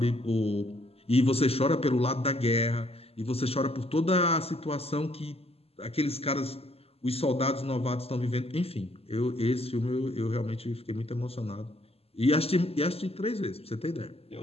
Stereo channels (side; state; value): right; late; 0.29 ms